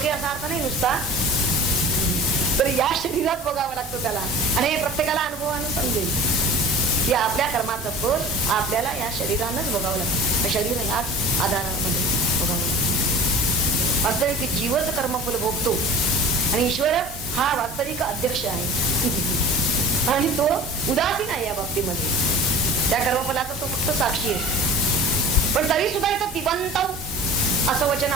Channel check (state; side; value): normal; both; correlation 0.40